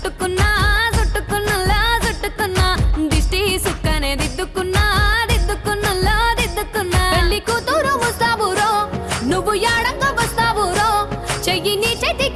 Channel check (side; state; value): both; identical; correlation 1.00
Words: చుట్టుకున్నులో చుట్టుకున్నా దిష్టి సుక్కనే దిద్దుకున్నా దిద్దుకున్నులో దిద్దుకున్నా పెళ్లి కూతురు వస్తావురో నువ్వు యాడంగా వస్తావురో చెయ్యి నీ